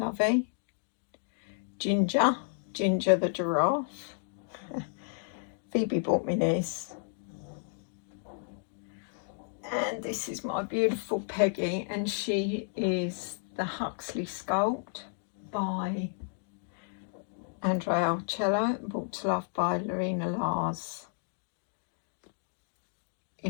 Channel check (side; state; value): right; silent; digital silence